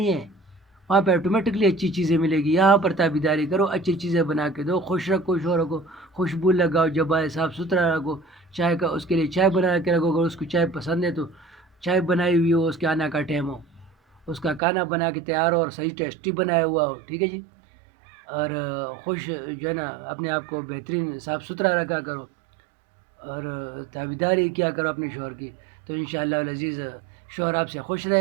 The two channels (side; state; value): left; drops out; at 14.6 s